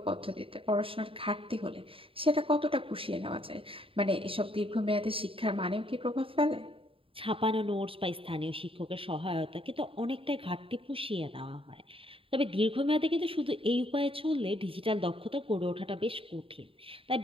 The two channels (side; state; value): left; late; 0.26 ms